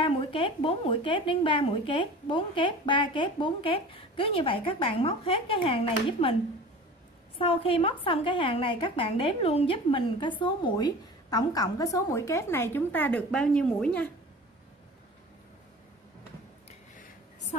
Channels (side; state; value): both; normal; correlation 0.39